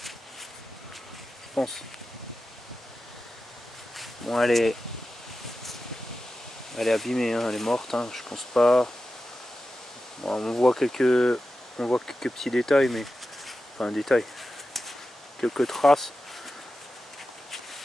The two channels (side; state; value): both; normal; correlation 0.92